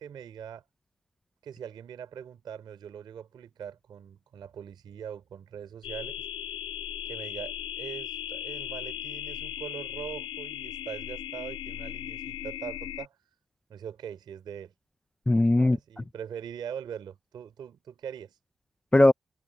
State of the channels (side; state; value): both; normal; correlation 0.86